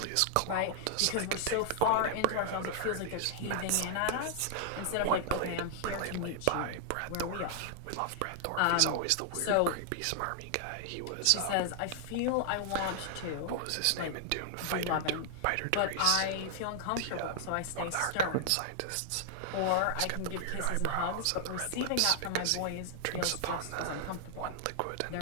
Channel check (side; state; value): both; different; correlation 0.00